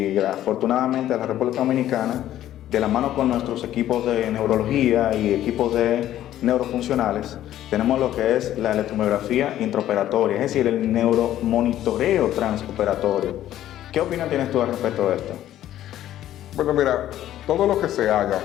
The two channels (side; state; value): right; quieter; 12.6 dB